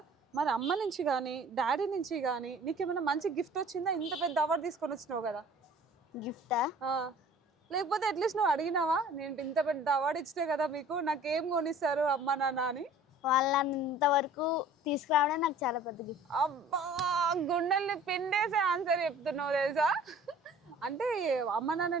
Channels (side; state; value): both; normal; correlation 0.48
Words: మరి అమ్మ నుంచి కానీ డాడీ నుంచి కానీ నీకేమైనా మంచి గిఫ్ట్ వచ్చిందా? ఇంత పెద్ద అవార్డు తీసుకొని వచ్చినావు కదా. గిఫ్టా? లేకపోతే అట్లీస్ట్ నువ్వు అడిగినావా, నేను ఇంత పెద్ద అవార్డు ఇచ్చితే కదా మీకు, నాకేం కొనిస్తారు అమ్మ నాన్న అని? వాళ్ళని ఇంతవరకు తీసుకురావడం నాకు చాలా పెద్ద గిఫ్ట్. అబ్బా, గుండెల్ని పిండేసే ఆన్సర్ చెప్తున్నావు తెలుసా. అంటే అమ్మ